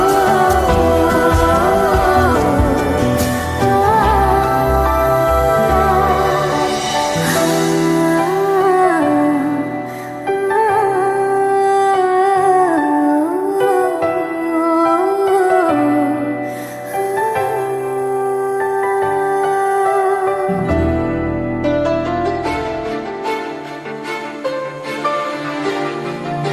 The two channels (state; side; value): identical; both; correlation 1.00